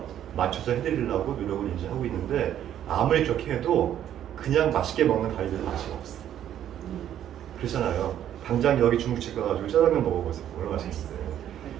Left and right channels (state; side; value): quieter; left; 10.8 dB